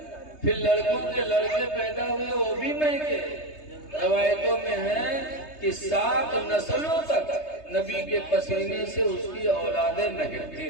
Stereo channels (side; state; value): right; late; 3.3 ms